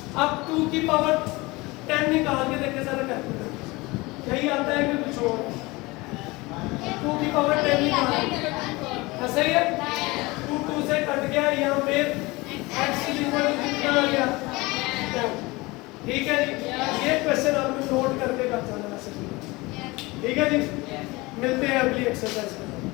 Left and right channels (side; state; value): right; quieter; 22.8 dB